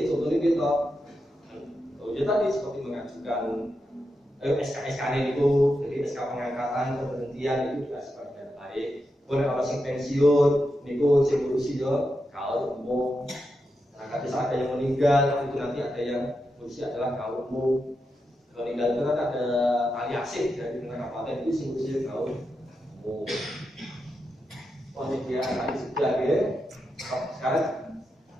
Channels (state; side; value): normal; both; correlation 0.87